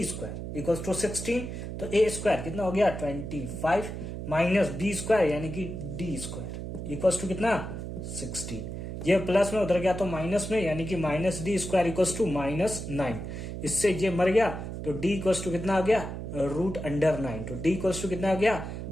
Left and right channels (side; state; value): right; noise; hum, 7 dB below the sound